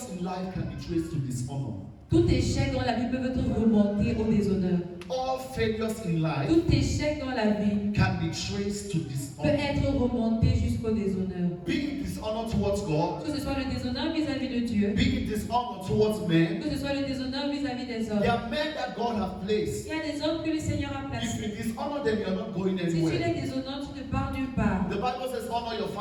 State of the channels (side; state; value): both; identical; correlation 1.00